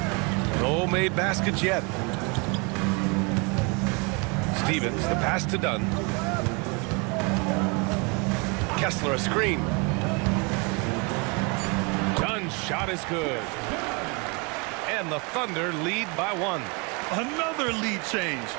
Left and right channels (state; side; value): quieter; left; 31.4 dB